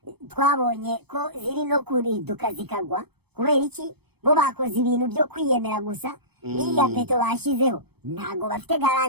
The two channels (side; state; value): left; late; 0.97 ms